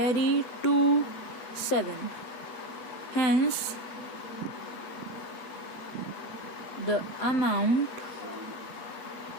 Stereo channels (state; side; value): late; right; 7.9 ms